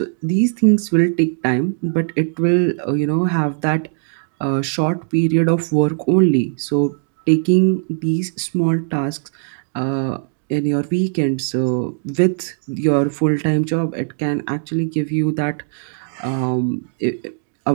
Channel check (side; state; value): left; silent; digital silence